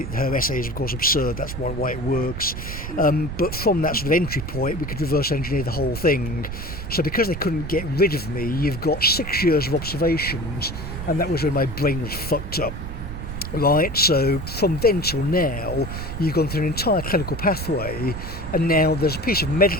Her essay is of course absurd, that's why it works. But from that sort of entry point, we could reverse engineer the whole thing. So because they couldn't get rid of me, you've got 6 years of observations, and that was when my brain was fucked up. Right, so from then till now, you've gone through an entire clinical pathway, and now there's a piece of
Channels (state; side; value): noise; right; rumble, 7 dB below the sound